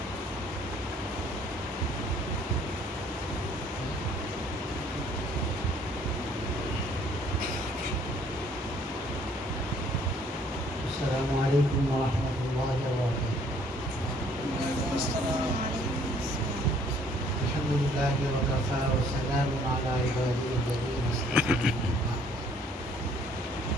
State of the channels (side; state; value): both; normal; correlation 0.60